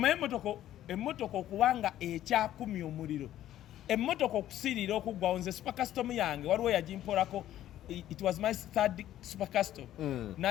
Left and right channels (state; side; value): quieter; right; 12.6 dB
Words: emmotoka okubanga ekyakumya omuliro emmotoka okusirira okuggwawo nze super custom yange waliwo yagimpolako it was my third super custom